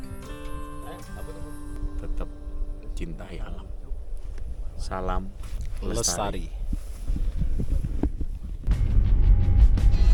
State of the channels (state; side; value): identical; both; correlation 1.00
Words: Tetap cintai alam. Salam Lestari.